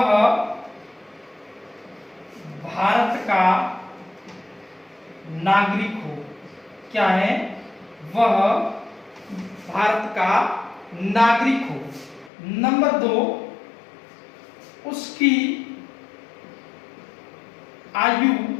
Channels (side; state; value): right; drops out; at 12.3 s